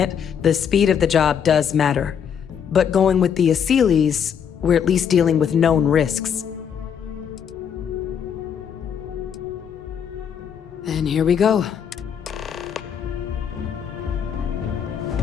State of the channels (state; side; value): quieter; right; 7.9 dB